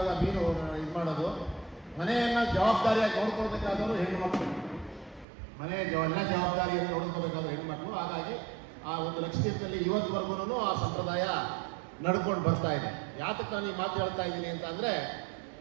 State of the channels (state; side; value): drops out; left; at 5.2 s